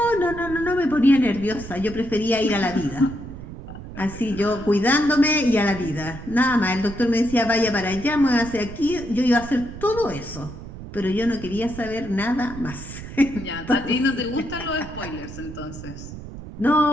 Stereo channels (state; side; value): noise; right; rumble, 12 dB below the sound